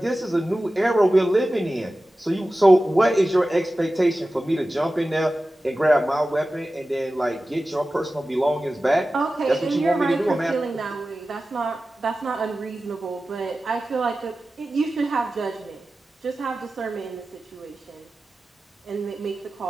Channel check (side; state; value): both; normal; correlation 0.95